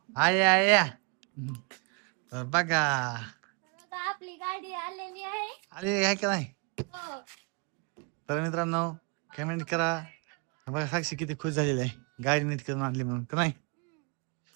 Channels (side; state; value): left; quieter; 32.2 dB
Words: आय आय या. तर बघा आपली गाडी आलेली आहे. आले काय का नाही. हो. तर मित्रांनो कमेंट करा. बघा साक्षी किती खुश झालेली आहे गाडी नीट करून आणली म्हणून, का नाही